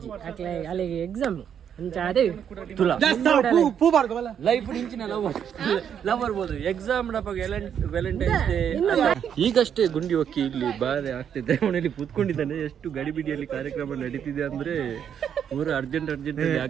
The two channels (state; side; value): quieter; left; 8.5 dB